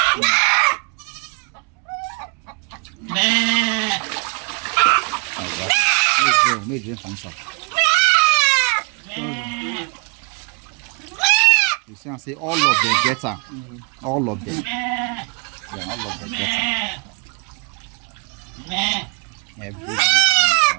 Make drink from some. You see, I say all of them get her. All of them. Yeah, all of them get her. Every one of them is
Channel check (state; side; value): quieter; left; 34.9 dB